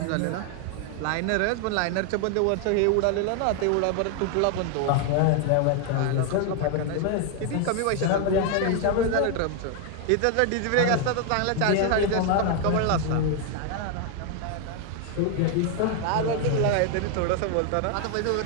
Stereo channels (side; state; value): both; different; correlation 0.01